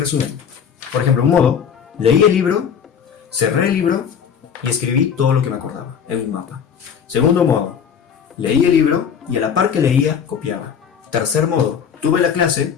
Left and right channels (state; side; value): quieter; right; 7.4 dB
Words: Por ejemplo, un modo, leí el libro, cerré el libro y escribí todo lo que me acordaba en un mapa. Segundo modo, leí el libro y a la par que leía, copiaba. Tercer modo, tuve la clase,